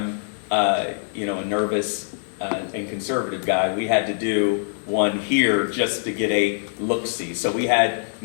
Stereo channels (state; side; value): silent; right; digital silence